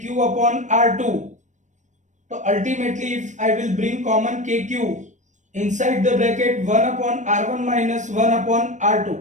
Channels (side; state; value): left; late; 0.35 ms